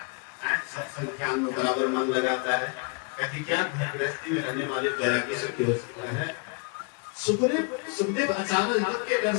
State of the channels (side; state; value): right; quieter; 34.9 dB